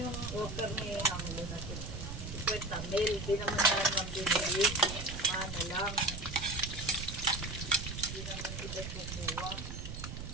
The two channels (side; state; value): right; noise; rumble, 8 dB below the sound